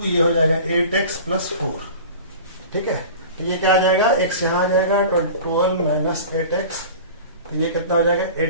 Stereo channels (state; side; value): inverted; both; correlation -0.38